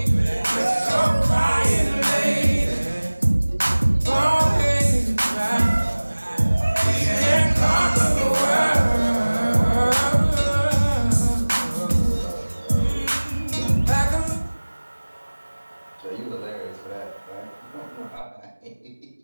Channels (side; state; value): both; inverted; correlation -1.00